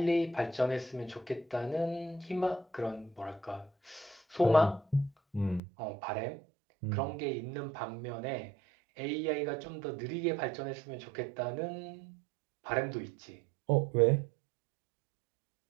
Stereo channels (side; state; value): left; drops out; at 5.6 s